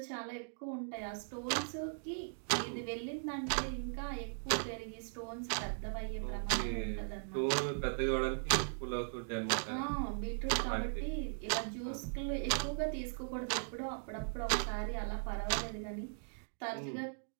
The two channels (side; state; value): left; silent; digital silence